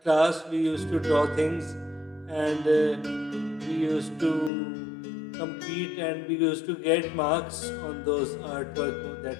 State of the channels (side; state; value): right; drops out; at 4.5 s